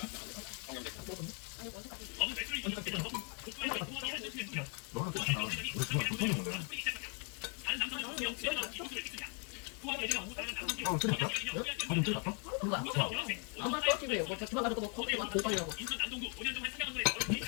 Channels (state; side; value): quieter; right; 35.1 dB